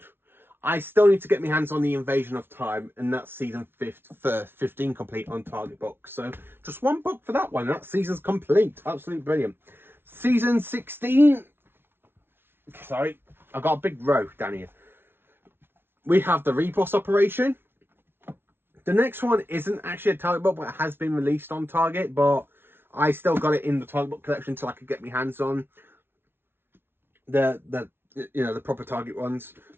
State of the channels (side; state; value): left; late; 0.11 ms